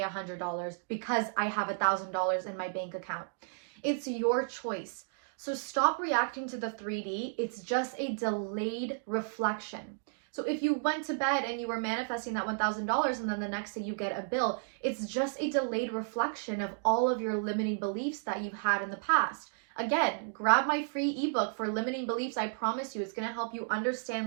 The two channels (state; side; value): silent; left; digital silence